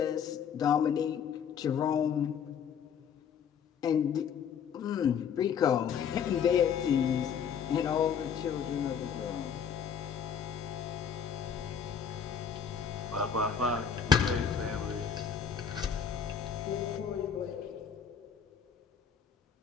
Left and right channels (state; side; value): quieter; right; 7.4 dB